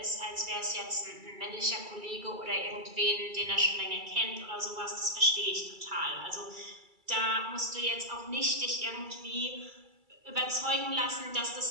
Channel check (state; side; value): late; left; 2.3 ms